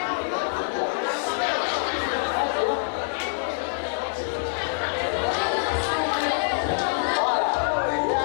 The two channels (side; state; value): right; silent; digital silence